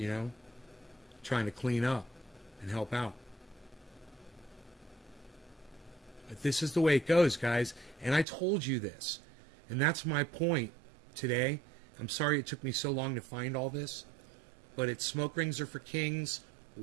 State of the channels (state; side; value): drops out; left; at 8.2 s